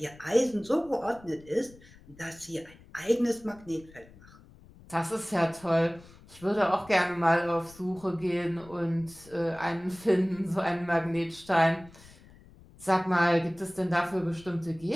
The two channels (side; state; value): left; noise; rumble, 23 dB below the sound